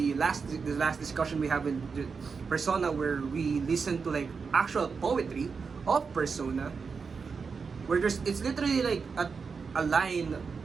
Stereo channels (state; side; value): quieter; left; 5.3 dB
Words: last discussion we have in the persona, where we listen to like actual poetry of persona, where it's literally like a line